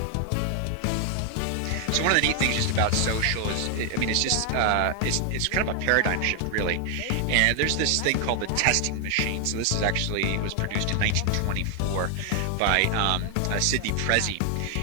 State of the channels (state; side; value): different; both; correlation 0.00